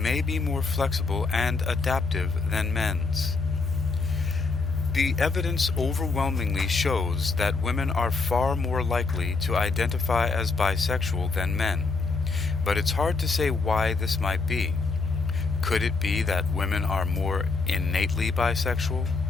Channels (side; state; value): right; quieter; 4.1 dB